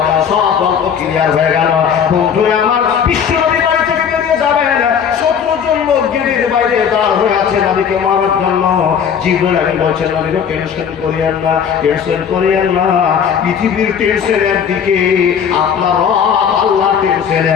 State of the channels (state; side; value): quieter; right; 7.6 dB